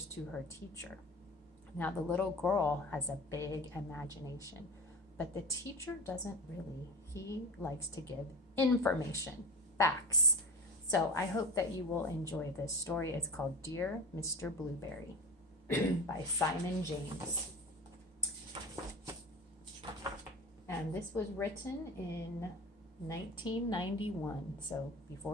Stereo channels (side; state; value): both; normal; correlation 0.31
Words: to her teacher. Now, the little girl has a big imagination, but the teacher doesn't really. He likes to give information, facts. So I hope that you will enjoy this story. It's called Dear Mr. Blueberry by Simon James. And this was written in 1991, so